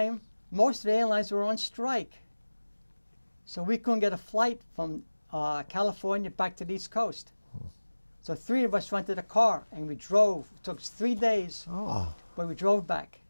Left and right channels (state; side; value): inverted; both; correlation -1.00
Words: most of the airlines were on strike. So we couldn't get a flight from California back to the East Coast. So 3 of us rented a car and we drove. It took us 3 days, but we drove back.